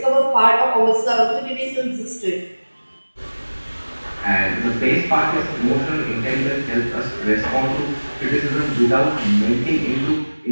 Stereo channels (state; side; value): inverted; both; correlation -1.00